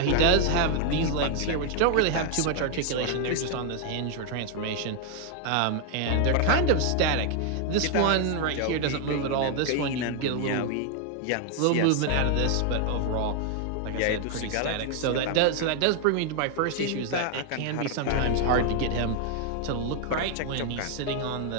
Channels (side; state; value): both; different; correlation 0.00